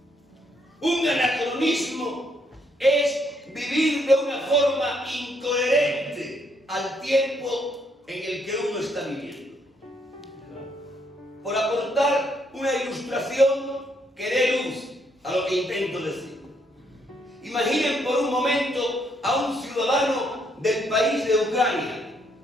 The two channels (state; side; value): normal; both; correlation 0.72